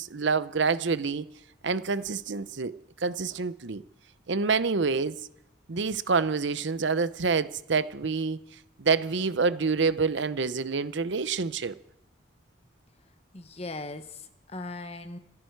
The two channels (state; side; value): quieter; left; 4.3 dB